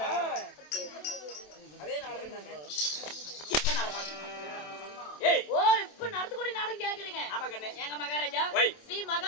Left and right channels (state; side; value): late; right; 27 ms